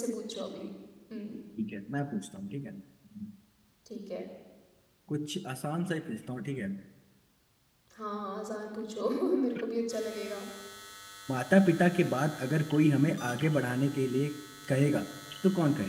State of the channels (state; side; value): identical; both; correlation 1.00